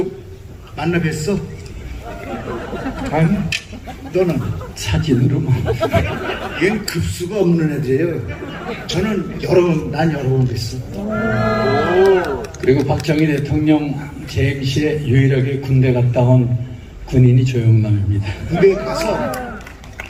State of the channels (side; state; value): both; identical; correlation 1.00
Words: 만나 뵀어? 아니, 너는 사진으로만. 얘는 급수가 없는 애들이에요. 난 여러 번 뵀어. 그리고 박정희 대통령 재임 시에 유일하게 군대 갔다 온 군인이 조영남입니다. 군대 가서